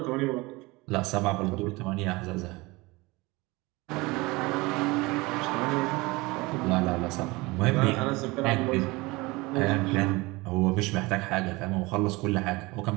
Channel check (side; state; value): left; quieter; 23.1 dB